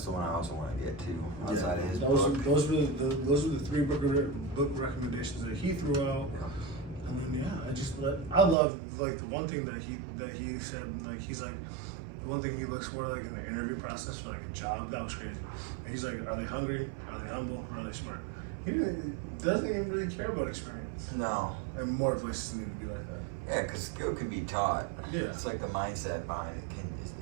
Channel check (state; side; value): drops out; left; at 8.6 s